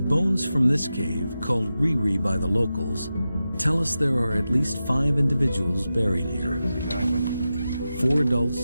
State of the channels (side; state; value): both; inverted; correlation -0.92